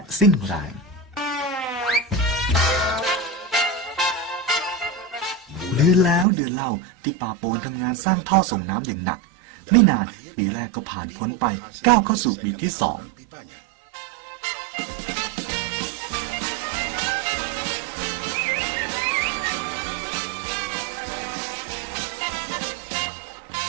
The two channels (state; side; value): drops out; left; at 6.2 s